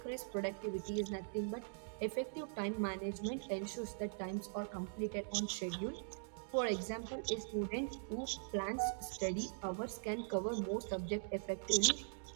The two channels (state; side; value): silent; left; digital silence